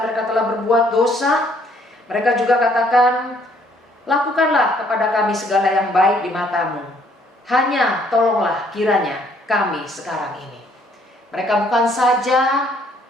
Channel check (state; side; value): normal; both; correlation 0.64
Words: mereka telah berbuat dosa. Mereka juga katakan, lakukanlah kepada kami segala yang baik di matamu. Hanya tolonglah kiranya kami sekarang ini. Mereka bukan saja